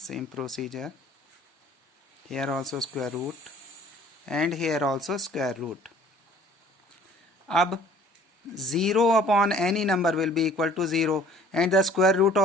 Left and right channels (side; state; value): both; normal; correlation 0.53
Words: here also square root and here also square root. अब 0 upon any number will be equal to 0 and the square root